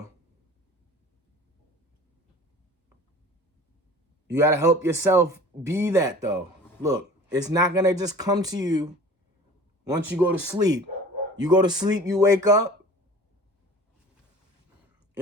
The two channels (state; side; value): normal; both; correlation 0.43